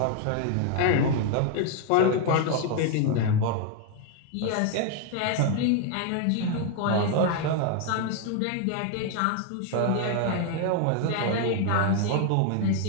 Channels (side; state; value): both; different; correlation 0.00